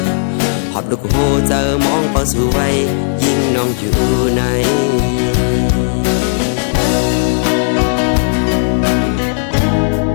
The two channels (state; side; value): silent; right; digital silence